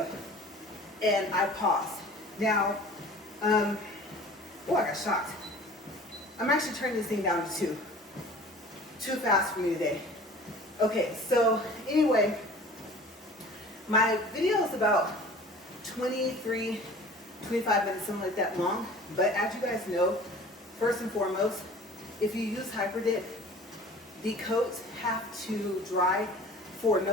And I paused. Now, oh, I got shocked. I'm actually turning this thing down to 2. Too fast for me today. Okay, so anyway, my video is about 23, 25 minutes, something like that long. But as you guys know, first and foremost, if you use Hyperdip, the coats have to dry for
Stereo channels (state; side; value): normal; both; correlation 0.44